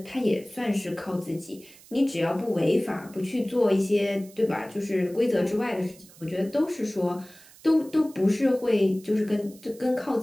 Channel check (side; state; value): right; noise; hiss, 23 dB below the sound